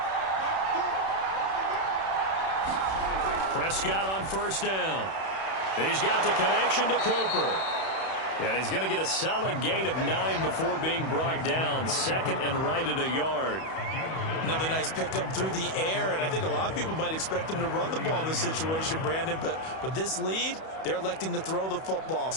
Prescott on 1st down. He's got the connection to Cooper. And he's going to get a solid gain of 9 before being brought down. 2nd and right at a yard. Another nice pickup through the air, and I think a lot of people might expect them to run the ball in this situation, Brandon, but with this lead, they're electing to throw the football.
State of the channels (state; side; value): late; right; 31 ms